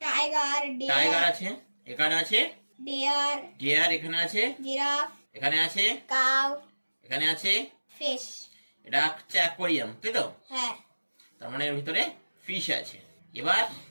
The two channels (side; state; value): both; inverted; correlation -1.00